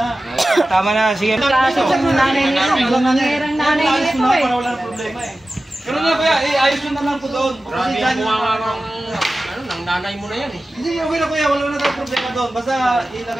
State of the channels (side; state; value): both; normal; correlation 0.95